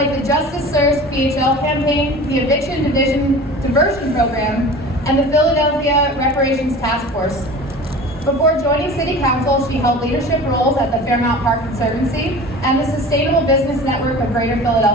the Justice Serves PHL campaign, the Eviction Diversion Program, and the Philadelphia Reparations Task Force. Before joining City Council, she held leadership roles at the Fairmount Park Conservancy and the Sustainable Business Network of Greater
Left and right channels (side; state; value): both; normal; correlation 0.38